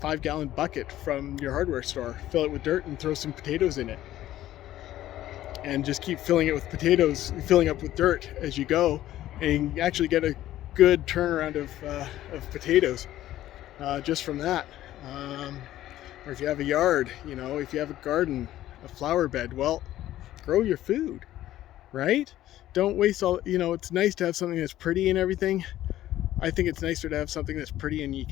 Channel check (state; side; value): quieter; right; 13.7 dB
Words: bucket from your hardware store, fill it with dirt, and throw some potatoes in it. And just keep filling it with potatoes, filling up with dirt as you go, and you actually get a good turnaround of potatoes just from that. Or if you have a yard, you know, if you have a garden, a flower bed, well, grow your food, right? Don't waste all, you know, it's nice to have something that's pretty and everything. I think it's nicer to have something that's pretty and you